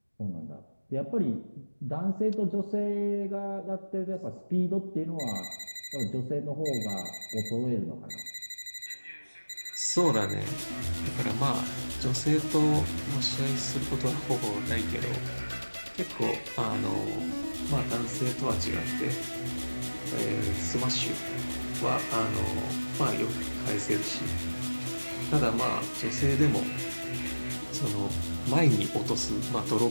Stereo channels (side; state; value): both; inverted; correlation -1.00